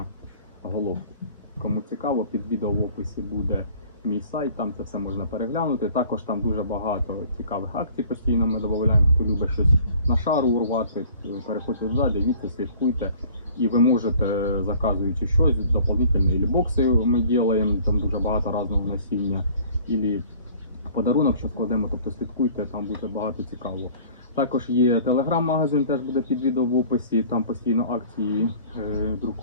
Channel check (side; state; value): both; inverted; correlation -0.50